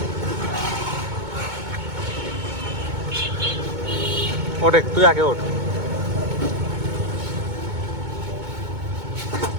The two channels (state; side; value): late; left; 2.2 ms